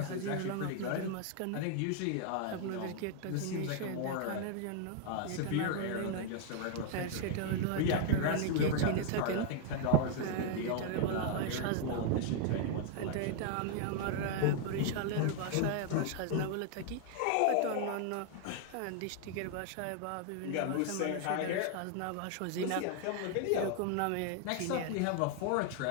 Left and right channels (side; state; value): both; different; correlation 0.00